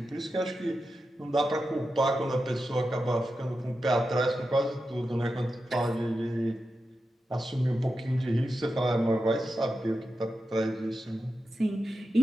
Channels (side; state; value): both; normal; correlation 0.90